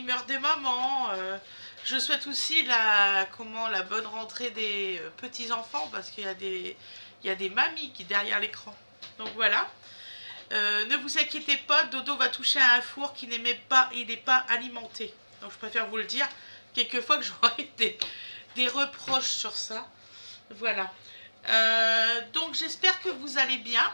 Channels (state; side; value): inverted; both; correlation -1.00